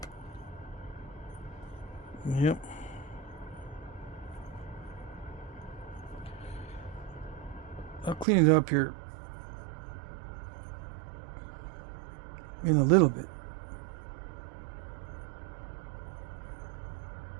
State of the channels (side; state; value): left; drops out; at 8.2 s